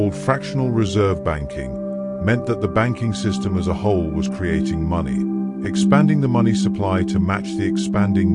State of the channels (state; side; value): identical; both; correlation 1.00